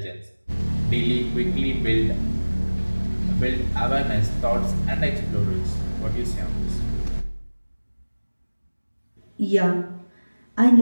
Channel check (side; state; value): both; inverted; correlation -1.00